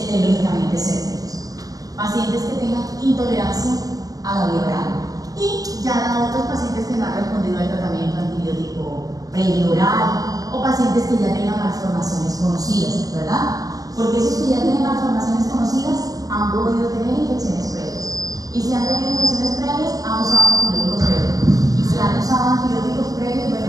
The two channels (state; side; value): late; left; 0.17 ms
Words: lógicamente sépticos, pacientes que tengan intolerancia a la vía oral y ya otros pacientes que no han respondido al tratamiento antibiótico previo oral o pacientes que ya tengan malformaciones conocidas, ¿verdad? Porque esos que ya tienen malformaciones conocidas han podido tener infecciones previas y si han tenido infecciones previas han usado antibióticos previos y si han usado antibióticos previos,